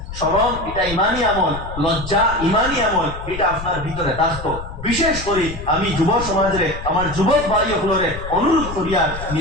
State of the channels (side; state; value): left; noise; rumble, 10 dB below the sound